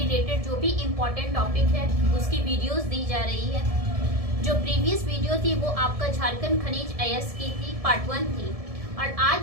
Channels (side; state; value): left; late; 1.7 ms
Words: जो भी इम्पोर्टेंट टॉपिक है उसकी वीडियोस दी जा रही है। जो प्रीवियस वीडियो थी वो आपका झारखंड खनिज अयस्क की थी, पार्ट 1 थी, और